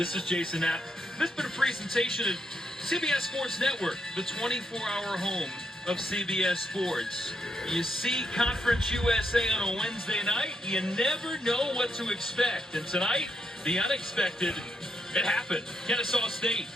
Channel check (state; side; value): normal; both; correlation 0.79